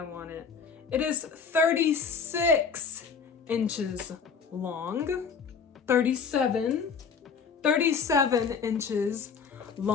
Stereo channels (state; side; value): quieter; right; 5.9 dB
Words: want it. It is 36 inches long. 37 inches